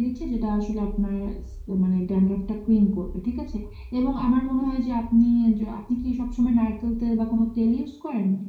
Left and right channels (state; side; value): identical; both; correlation 1.00